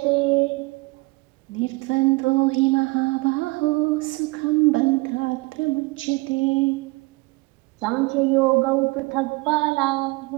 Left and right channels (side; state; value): left; quieter; 24.8 dB